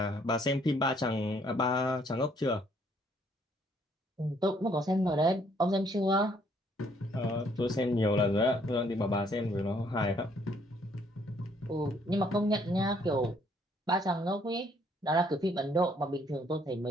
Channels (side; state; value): both; normal; correlation 0.66